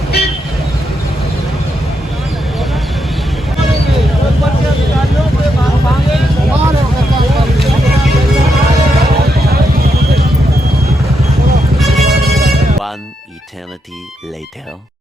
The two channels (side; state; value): both; normal; correlation 0.82